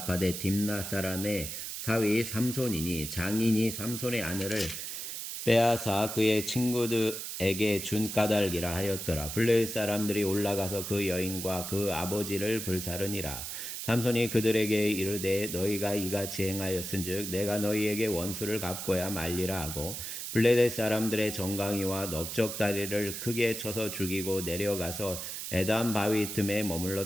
딥나 사람의 사위 삼손이니 장인이 삼손의 아내를 빼앗아 그의 친구들에게 준 까닭이라 하였더라. 블레셋 사람들이 올라가서 그 여인과 그 아버지를 불사르니라. 삼손이 그들에게 이르되 너희가 이같이 행하였은즉 내가 너희에게 원수를 갚고야 말리라 하고 블레셋 사람들의 정강이와 넓적다리를 크게 쳐서 죽이고 내려가서 에담 바위 틈에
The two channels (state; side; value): noise; right; hiss, 6 dB below the sound